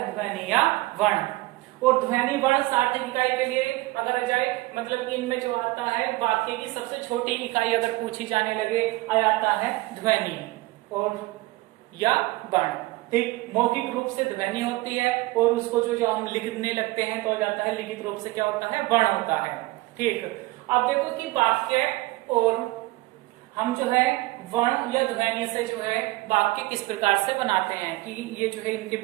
ध्वनि या वर्ण। और ध्वनि वर्ण सार्थक इकाई के लिए अगर आ जाए मतलब कि इनमें जो आता है वाक्य की सबसे छोटी इकाई अगर पूछी जाने लगे, आ जाता है ध्वनि और या वर्ण। ठीक, मौखिक रूप से ध्वनि होती है और उसको जो हम लिखने लगते हैं तो आ जाता है लिखित रूप से क्या होता है, वर्ण होता है। ठीक, अब देखो कि वाक्य और हम जो है वर्ण या ध्वनि से जो है वाक्य किस प्रकार से बनाते हैं कि ये जो है इनके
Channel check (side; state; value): left; quieter; 20.4 dB